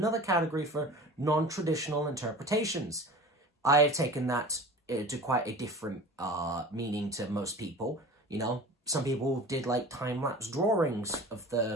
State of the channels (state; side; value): normal; both; correlation 0.38